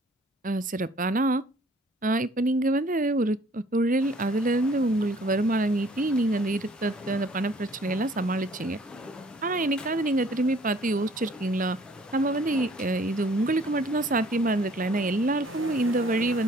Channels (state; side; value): normal; both; correlation 0.57